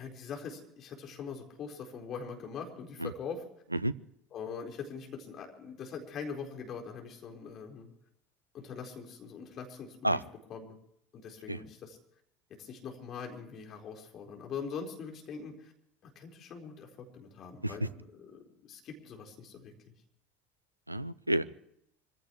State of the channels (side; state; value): both; inverted; correlation -0.39